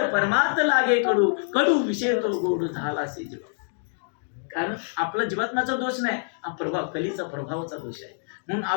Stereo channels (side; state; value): right; silent; 61 dB below the other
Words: परमार्थ लागे कडू, कडू विषय तो गोड झाला असे जीव. कारण आपला जीवात्माचा दोष नाही, हा प्रभाव कलीचा प्रभावाचा दोष आहे. म्हणून